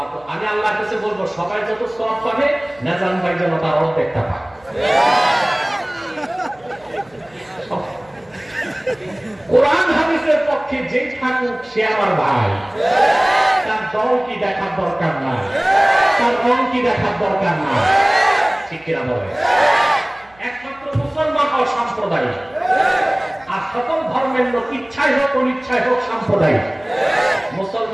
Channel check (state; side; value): noise; right; hum, 30 dB below the sound